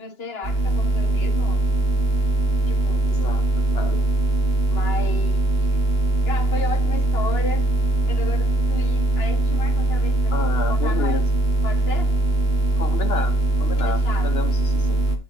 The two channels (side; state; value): right; late; 2.9 ms